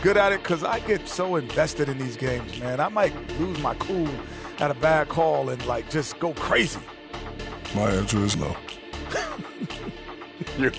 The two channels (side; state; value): both; identical; correlation 1.00